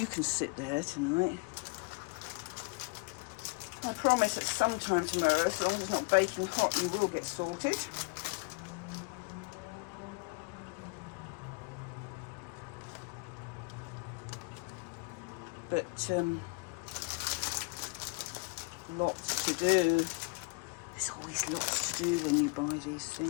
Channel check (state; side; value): quieter; right; 30.8 dB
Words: can sit there tonight. I promise at some time tomorrow, as long as it's not baking hot, you will get sorted. But Lots to do. There's always lots to do when you buy these